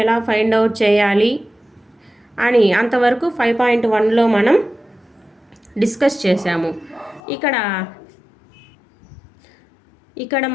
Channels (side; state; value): right; drops out; at 7.2 s